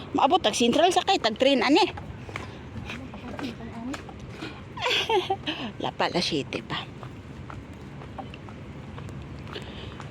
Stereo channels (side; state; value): both; identical; correlation 1.00